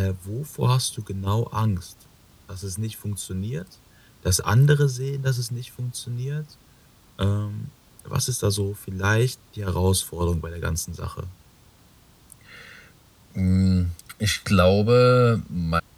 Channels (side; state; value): both; identical; correlation 1.00